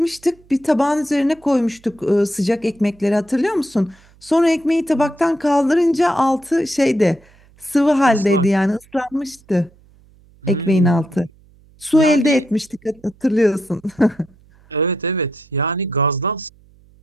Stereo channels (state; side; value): noise; right; hum, 29 dB below the sound